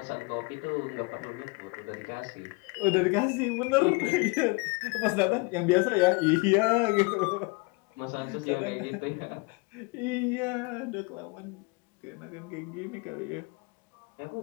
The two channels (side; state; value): right; quieter; 29.0 dB